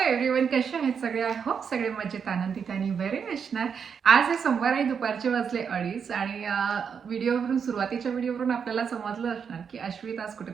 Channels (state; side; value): quieter; left; 6.7 dB